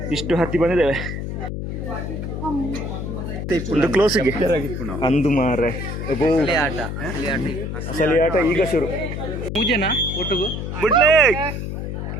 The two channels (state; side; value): noise; left; hum, 5 dB below the sound